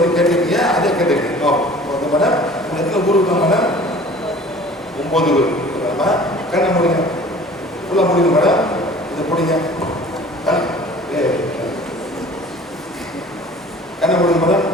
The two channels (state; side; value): normal; both; correlation 0.46